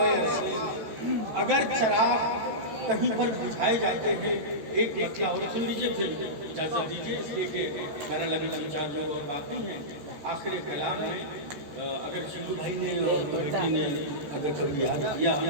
अर्शी, अगर चराग कहीं पर बुझाए जाते हैं। एक मतलब और सुन लीजिए, फिर इजाज़त दीजिए, इसलिए कि मेरा लगी जहाँ जो और बाकी हैं। आखिरी कलाम में अगर शिंदू भाई ने और कमेटी ने अगर कभी याद किया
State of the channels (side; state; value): left; late; 14 ms